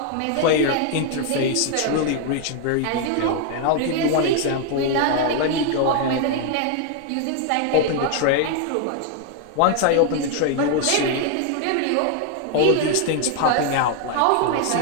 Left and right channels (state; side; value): different; both; correlation 0.00